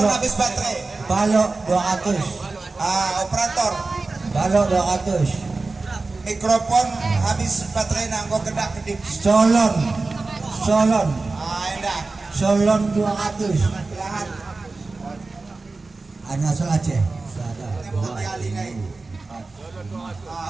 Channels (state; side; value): quieter; left; 3.6 dB